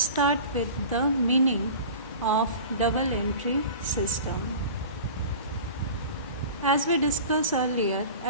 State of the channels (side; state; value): both; inverted; correlation -0.38